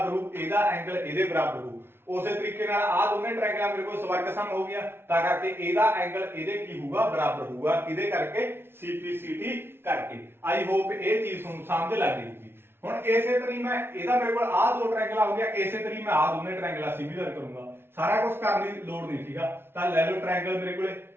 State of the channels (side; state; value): left; late; 0.11 ms